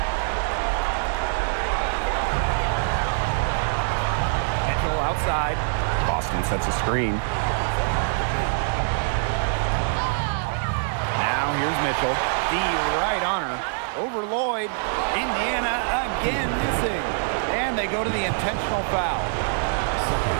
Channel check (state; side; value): silent; left; digital silence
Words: side. Boston sets a screen. Now here's Mitchell. D right on her. Over Lloyd. Indiana again missing. And they go to the intentional foul.